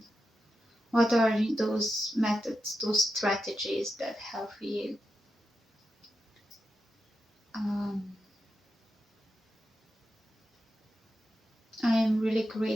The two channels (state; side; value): normal; both; correlation 0.89